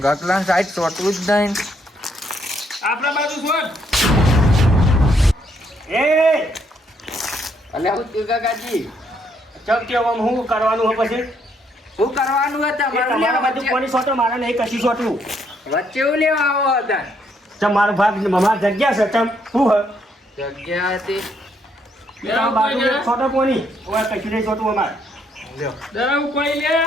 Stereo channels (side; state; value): both; normal; correlation 0.72